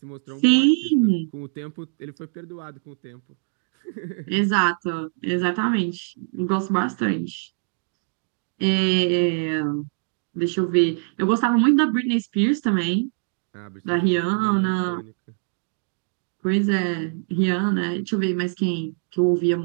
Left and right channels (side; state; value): left; silent; 63 dB below the other